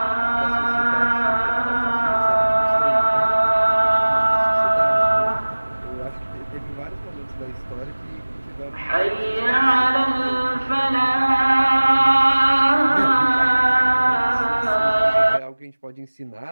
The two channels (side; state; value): both; inverted; correlation -1.00